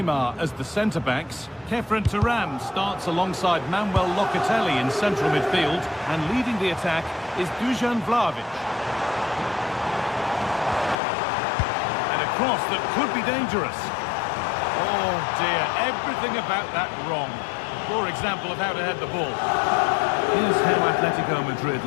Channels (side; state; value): right; drops out; at 11.0 s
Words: as the centre-backs. Kefren Turan starts alongside Manuel Locatelli in central midfield. And leading the attack is Dusan Vlahovic. And a cross that could be dangerous. Oh dear, everything about that wrong. Poor example of how to head the ball. Here's how Atletico Madrid